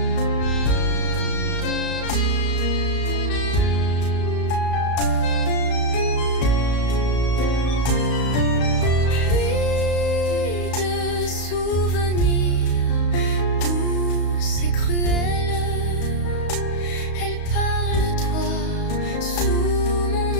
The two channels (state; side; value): late; right; 34 ms